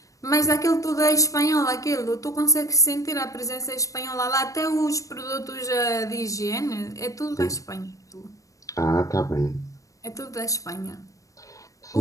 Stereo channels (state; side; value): late; right; 0.16 ms